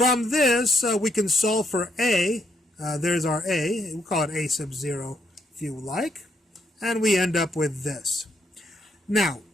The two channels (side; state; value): both; normal; correlation 0.75